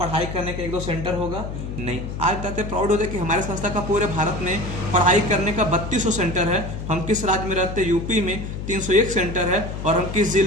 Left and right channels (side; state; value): left; noise; hum, 7 dB below the sound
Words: करने का 1-2 सेंटर होगा? नहीं। आज बताते प्राउड होते कि हमारे संस्था का पूरे भारत में पढ़ाई करने का 3200 सेंटर है। हम किस राज्य में रहते हैं? यूपी में 301 सेंटर है। और हम किस